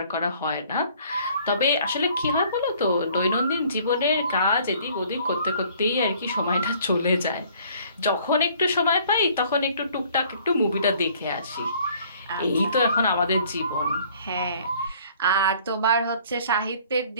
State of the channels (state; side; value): inverted; both; correlation -0.57